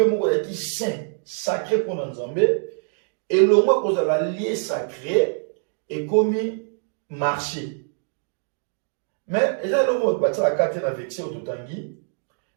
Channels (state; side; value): silent; left; digital silence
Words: où il est saint sacré pour nous Nzambé et le mot qu'on a la lié sacré et comme marché. Mais il y a le mot que la carte est vexé au Totangi.